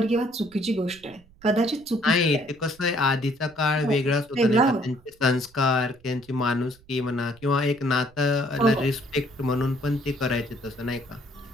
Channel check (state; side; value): noise; right; rumble, 27 dB below the sound